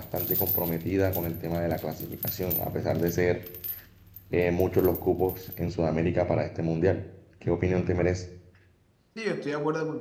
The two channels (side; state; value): both; identical; correlation 1.00